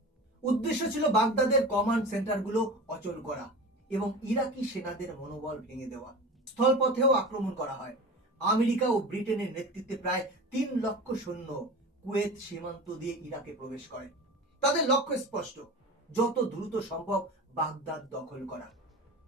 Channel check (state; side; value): normal; both; correlation 0.32